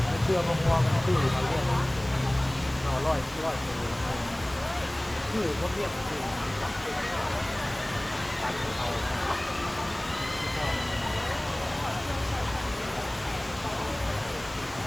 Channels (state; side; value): noise; right; hiss, 20 dB below the sound